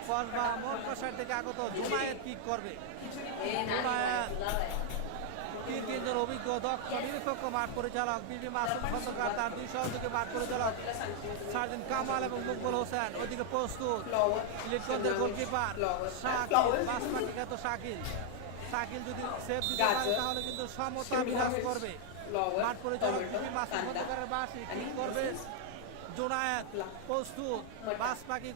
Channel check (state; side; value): different; both; correlation 0.00